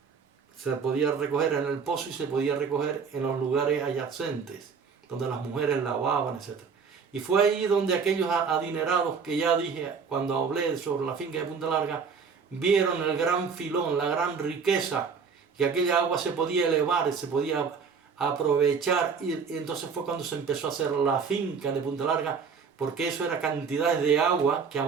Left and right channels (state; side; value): quieter; left; 5.7 dB